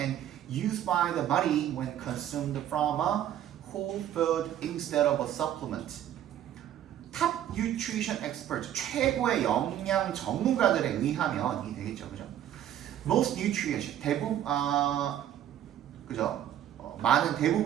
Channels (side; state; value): left; quieter; 11.2 dB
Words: used by the body when consumed from a whole food instead of a supplement. top nutrition experts, 최고의 영양 전문가들에 의하면 이 되겠죠, 그죠? most nutrients, 그죠? 많은